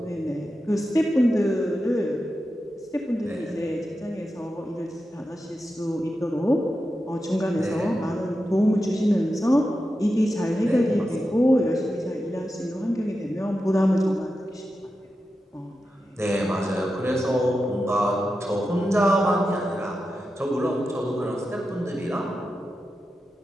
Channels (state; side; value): normal; both; correlation 0.90